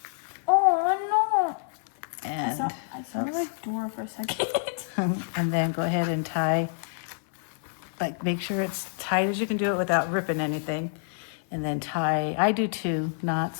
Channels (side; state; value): right; silent; 57 dB below the other